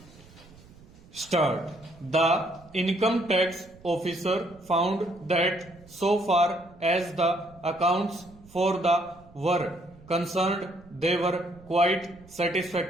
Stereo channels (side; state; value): right; noise; rumble, 24 dB below the sound